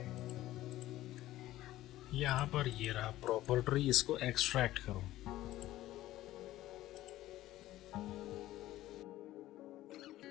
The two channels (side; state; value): right; quieter; 15.2 dB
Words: यहाँ पर ये रहा प्रॉपर ट्री, इसको एक्सट्रैक्ट करो।